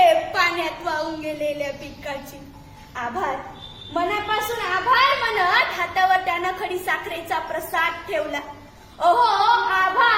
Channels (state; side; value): identical; both; correlation 1.00